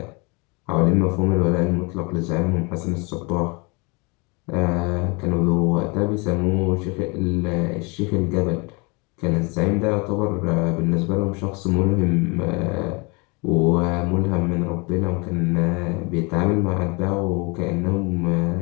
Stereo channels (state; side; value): quieter; right; 29.4 dB